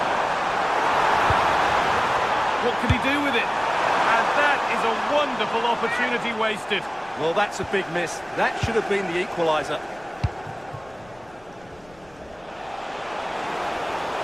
What can he do with it? And that is a wonderful opportunity wasted. Well, that's a big miss. That should have been the equaliser.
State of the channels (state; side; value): noise; left; rumble, 28 dB below the sound